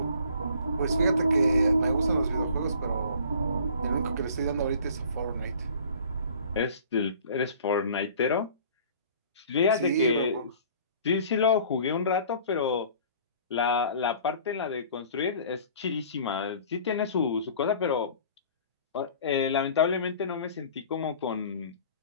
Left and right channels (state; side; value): inverted; both; correlation -0.49